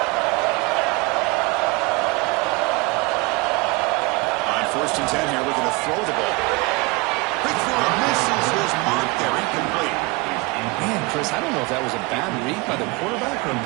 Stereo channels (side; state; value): left; quieter; 25.9 dB